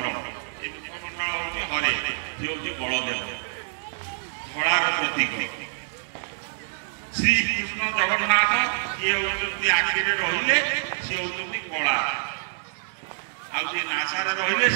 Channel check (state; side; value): silent; left; 61 dB below the other